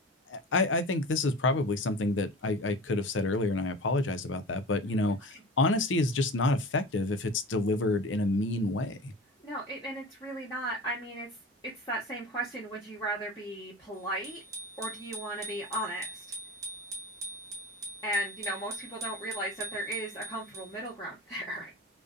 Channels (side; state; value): both; normal; correlation 0.34